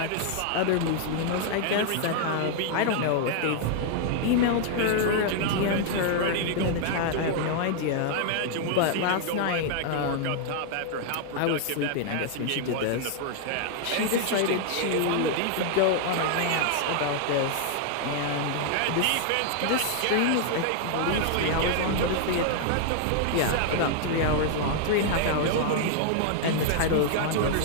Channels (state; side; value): different; both; correlation 0.00